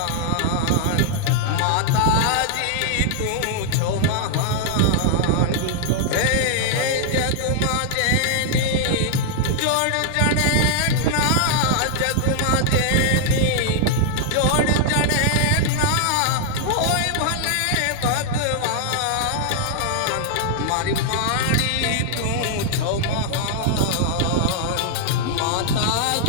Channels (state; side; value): different; both; correlation -0.01